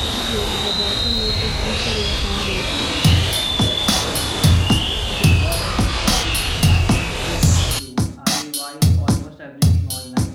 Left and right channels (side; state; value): both; identical; correlation 1.00